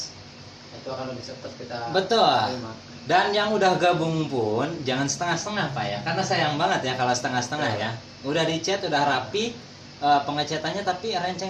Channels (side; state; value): both; identical; correlation 1.00